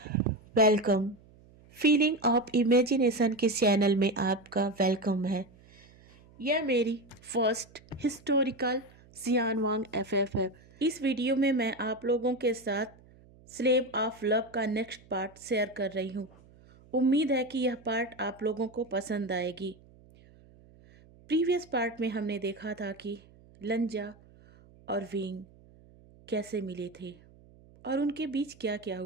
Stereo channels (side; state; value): right; noise; hum, 26 dB below the sound